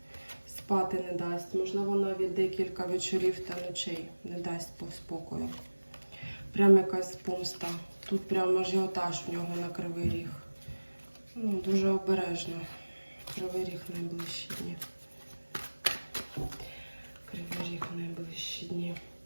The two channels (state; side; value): inverted; both; correlation -1.00